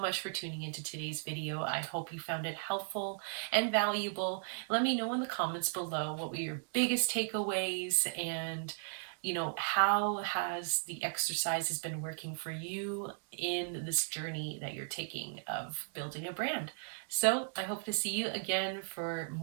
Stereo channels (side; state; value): left; silent; digital silence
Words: much for tuning into today's video. I hope you found it helpful and valuable. Let me know in the comments below what were your biggest takeaways, and how has the exercises been working for you in this journey that you're taking of building a brand. So I hope to see you again for